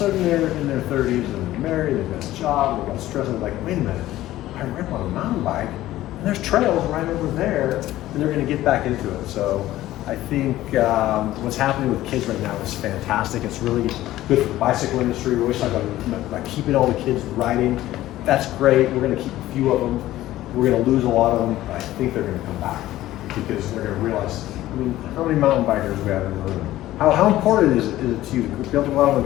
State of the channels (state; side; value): quieter; right; 15.0 dB